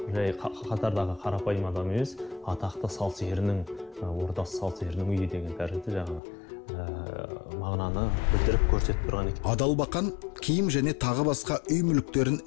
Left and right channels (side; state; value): right; drops out; at 6.2 s